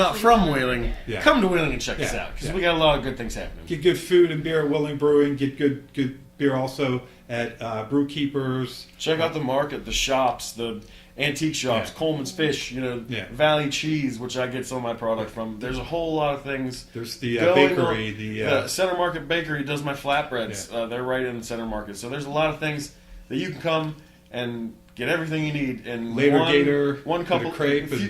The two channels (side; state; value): both; identical; correlation 1.00